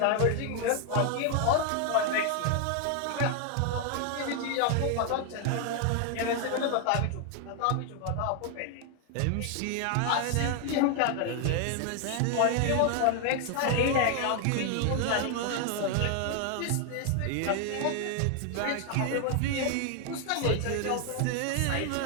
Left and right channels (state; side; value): different; both; correlation 0.00